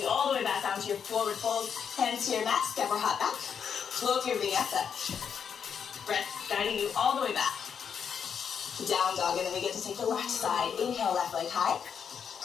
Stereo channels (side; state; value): right; quieter; 7.3 dB